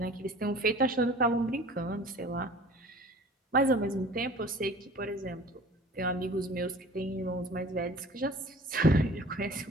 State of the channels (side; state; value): both; normal; correlation 0.45